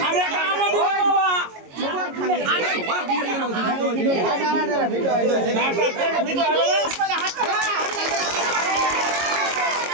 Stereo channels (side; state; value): left; late; 22 ms